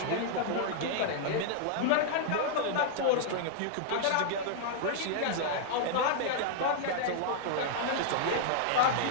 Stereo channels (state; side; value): different; both; correlation -0.01